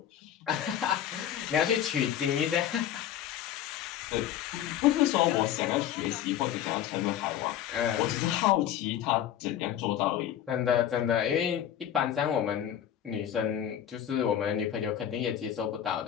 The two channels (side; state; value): right; quieter; 10.6 dB